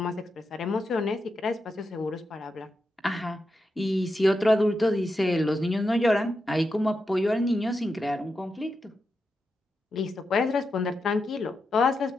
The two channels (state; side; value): normal; both; correlation 0.87